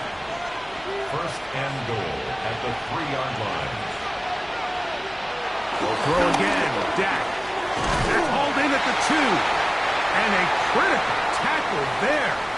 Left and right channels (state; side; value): noise; left; hum, 25 dB below the sound